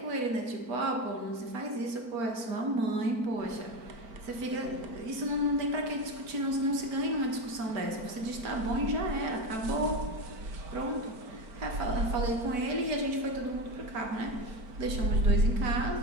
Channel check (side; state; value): left; late; 4.4 ms